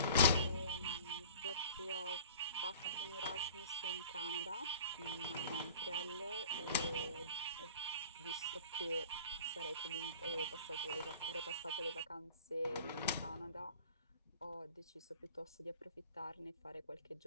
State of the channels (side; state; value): both; inverted; correlation -0.44